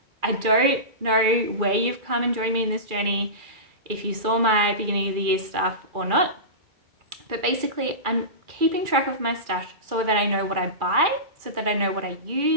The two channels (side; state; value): left; late; 2.4 ms